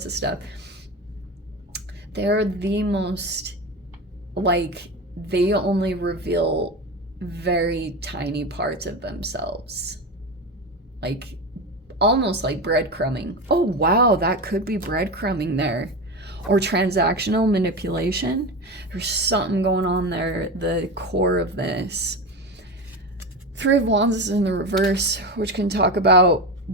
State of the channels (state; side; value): normal; both; correlation 0.22